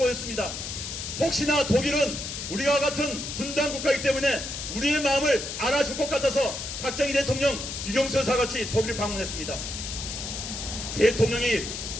혹시나 독일은 우리와 같은 분단 국가이기 때문에 우리의 마음을 알아줄 것 같아서 박정희 대통령, 유경수 여사 같이 독일을 방문했습니다. 대통령이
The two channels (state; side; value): noise; left; hiss, 6 dB below the sound